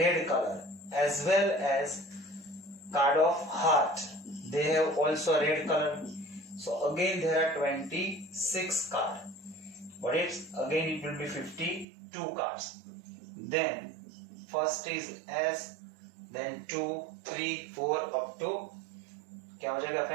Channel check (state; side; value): drops out; left; at 11.9 s